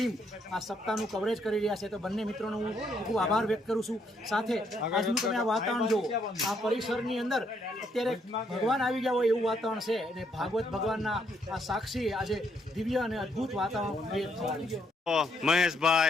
આ સપ્તાહનું કવરેજ કરી રહ્યા છે. તો બંને મિત્રોનો હું ખૂબ આભાર વ્યક્ત કરું છું. સાથે આજનું તમે આ વાતાવરણ જુઓ, આ પરિસરની અંદર અત્યારે ભગવાન આવી ગયા હોય એવું વાતાવરણ છે અને ભાગવત ભગવાનના આ સાક્ષી આજે દિવ્ય અને અદ્ભુત વાતાવરણ ક્રિએટ થવાનું છે.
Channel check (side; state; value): both; normal; correlation 0.73